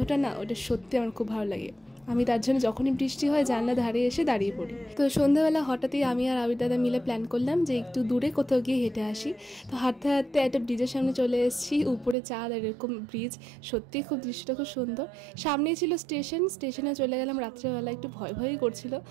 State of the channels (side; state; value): left; drops out; at 12.2 s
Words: না, ওটা সত্যি আমার খুব ভালো লাগে। আমি তার জন্য যখনই বৃষ্টি হয় জানলা ধারে এসে দাঁড়িয়ে পড়ি। তো সন্ধ্যাবেলা হঠাৎই আমি আর আবির দাদা মিলে প্ল্যান করলাম যে একটু দূরে কোথাও গিয়ে হেঁটে আসি। তো হাঁটতে হাঁটতে একটা ব্রিজের সামনে চলে এসেছি। উপরে চাঁদ আর এরকম ব্রিজ, সত্যিই খুব দৃশ্যটা খুব সুন্দর। সামনেই ছিল স্টেশনে চলে গেলাম রাত্রেবেলা। একটু ভয় ভয়ই করছিল,